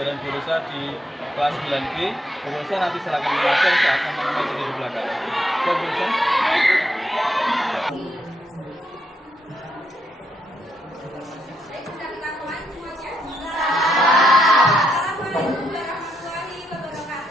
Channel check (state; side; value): normal; both; correlation 0.77